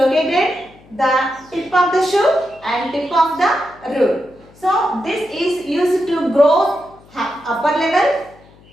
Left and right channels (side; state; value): left; noise; hum, 26 dB below the sound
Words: the tip of the shoot and tip of the root. So this is used to grow upper level